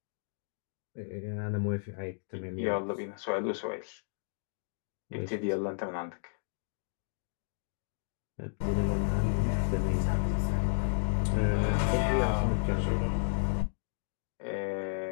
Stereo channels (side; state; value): right; silent; digital silence